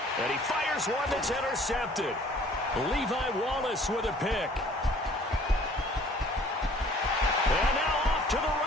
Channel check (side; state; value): both; normal; correlation 0.54